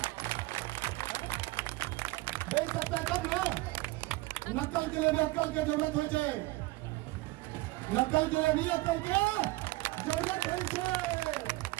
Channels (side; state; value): left; quieter; 21.2 dB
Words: बोल सकता है तब ना। नकल के लिए भी अक्ल की जरूरत हो छे, नकल के लिए भी अक्ल के जरूरत हो छे।